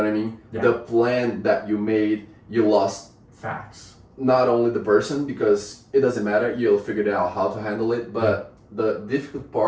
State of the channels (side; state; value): both; identical; correlation 1.00